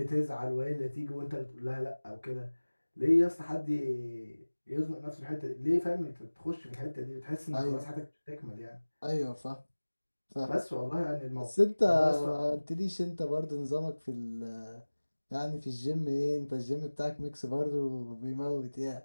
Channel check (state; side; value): inverted; both; correlation -1.00